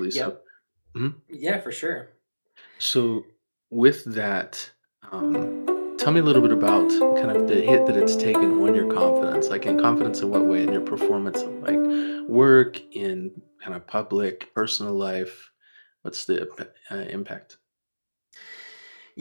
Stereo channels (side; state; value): both; inverted; correlation -1.00